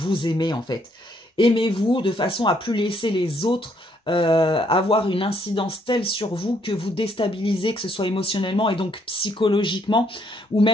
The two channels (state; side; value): normal; both; correlation 0.70